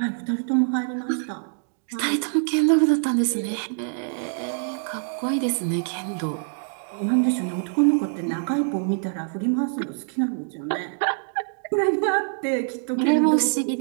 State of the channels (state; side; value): silent; left; digital silence